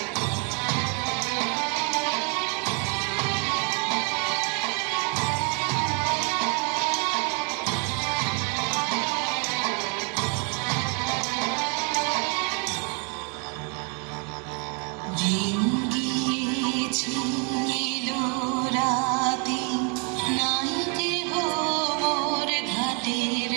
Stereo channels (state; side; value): quieter; left; 36.4 dB